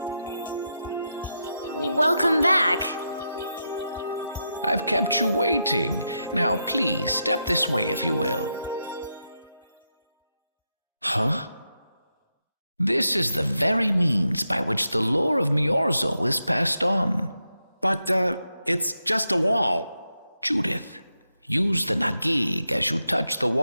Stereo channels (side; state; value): both; inverted; correlation -0.85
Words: Welcome back. I've kept you waiting. Now please, step this way if you will. Huh? This is the very means by which the lore of Miorzo is passed on. But, it's just a wall. Judith, use the Nagig as you touch the